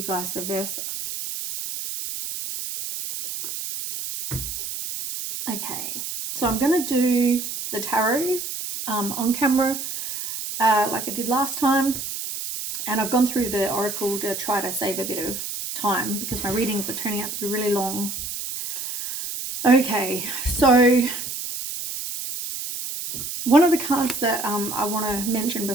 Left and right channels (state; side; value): noise; right; hiss, 6 dB below the sound